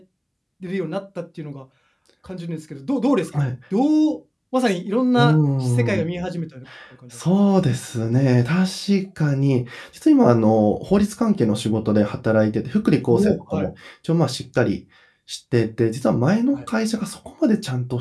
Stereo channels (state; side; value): identical; both; correlation 1.00